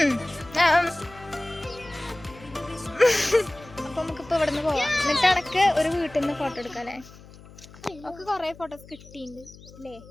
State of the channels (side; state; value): left; noise; hum, 20 dB below the sound